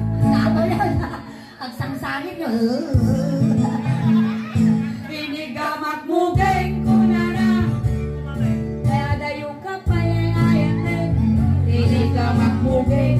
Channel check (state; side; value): identical; both; correlation 1.00